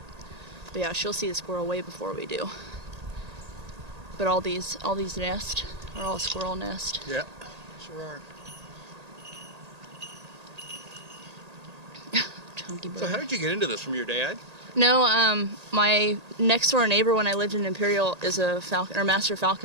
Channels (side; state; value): left; late; 1.8 ms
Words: But yeah, she'll see the squirrel way before we do. But all these nests are all squirrel nest. Yeah, sure are. So how did you get into this? From your dad? No, my next door neighbor when I lived in Imperial is a master